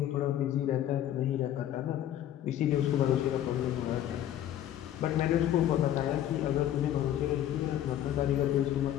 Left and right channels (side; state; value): right; quieter; 11.6 dB